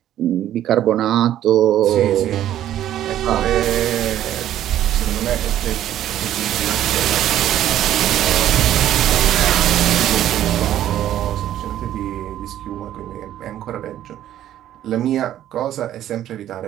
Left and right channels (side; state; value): left; quieter; 12.0 dB